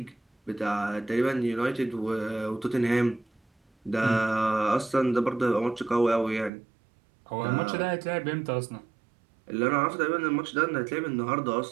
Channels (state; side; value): drops out; left; at 6.5 s